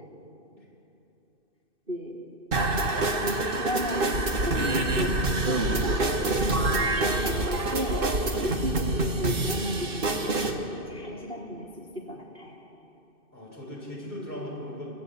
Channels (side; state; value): left; late; 2.6 ms